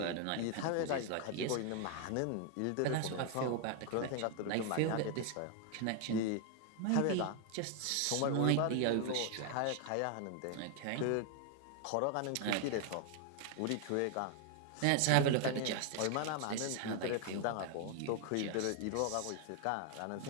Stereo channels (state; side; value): different; both; correlation 0.00